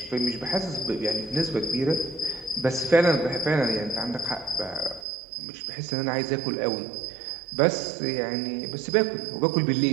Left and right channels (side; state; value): left; drops out; at 5.1 s